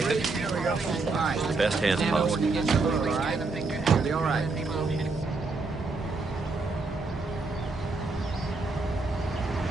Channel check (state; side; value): quieter; left; 3.8 dB